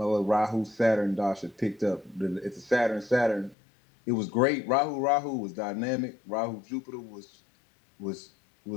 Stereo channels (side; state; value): right; drops out; at 3.6 s